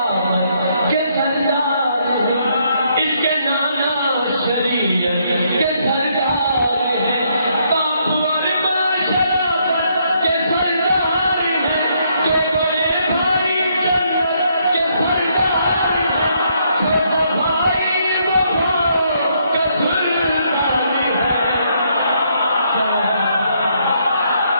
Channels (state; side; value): inverted; both; correlation -0.72